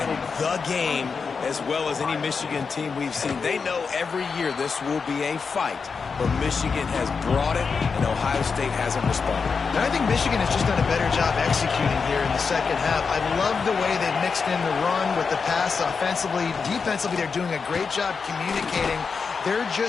the game, as well as any Michigan team we've seen. They know every year this will be a fight, but Michigan has brought it, and Ohio State hasn't responded. And I think Michigan has just done a better job executing here in the second half. I love the way they've mixed in the run with the pass offensively. Defensively, they're doing a great job communicating. They're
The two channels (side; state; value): right; quieter; 5.3 dB